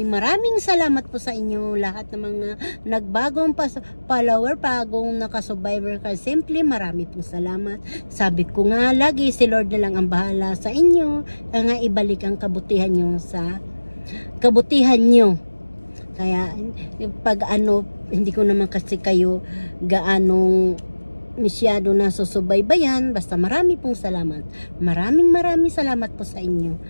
salamat po sa inyo lahat ng mga nagbagong follower, bagong naka-survivor ka. Simply marami pong salamat. Sabi ko nga lagi, si Lord na lang ang bahala sa inyo, nga ibalik ang kabutihan nyo sa kabutihan nyo. Kaya pag hindi ko naman kasi kayo gaanong masyado na susubaybayan, basta marami pong salamat. Maraming salamat po sa inyo.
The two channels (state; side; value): inverted; both; correlation -1.00